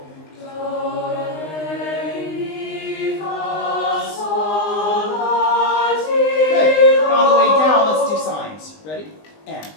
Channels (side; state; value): right; late; 19 ms